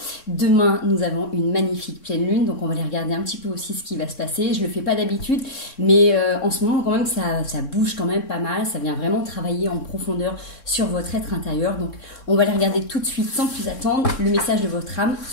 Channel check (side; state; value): right; late; 3.6 ms